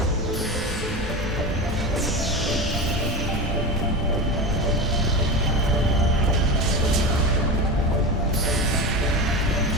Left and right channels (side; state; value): both; normal; correlation 0.23